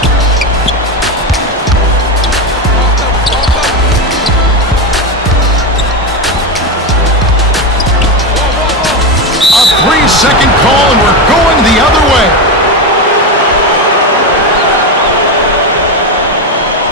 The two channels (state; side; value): normal; both; correlation 0.14